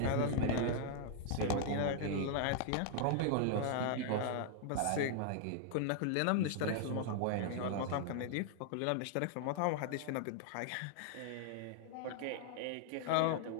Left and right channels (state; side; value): different; both; correlation -0.01